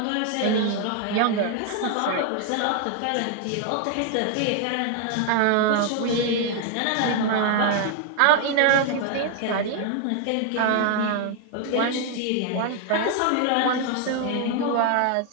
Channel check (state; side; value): different; both; correlation 0.01